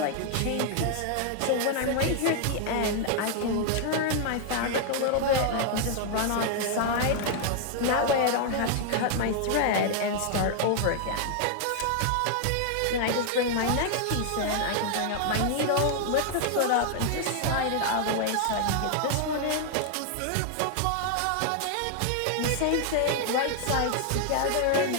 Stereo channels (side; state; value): both; different; correlation 0.00